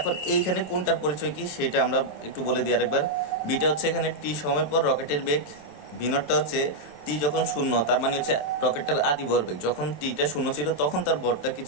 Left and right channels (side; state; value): right; late; 27 ms